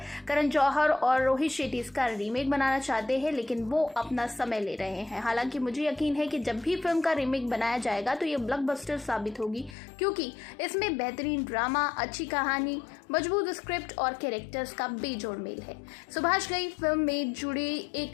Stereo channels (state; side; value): drops out; right; at 9.8 s